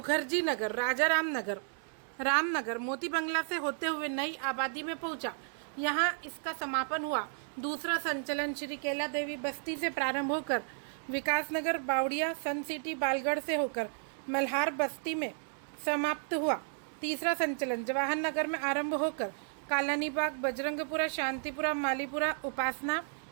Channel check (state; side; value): silent; left; 56 dB below the other